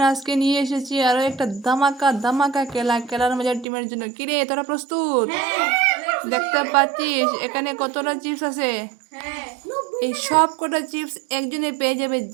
আজকে নিয়ে এসেছি আরো একটা ধামাকা ধামাকা খেলার মজার টিমের জন্য। কিরে তোরা প্রস্তুত? দেখতে পাচ্ছিস এখানে কতটা চিপস আছে। এই সব কটা চিপস একজনে পেয়ে যাবে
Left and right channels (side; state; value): left; drops out; at 3.7 s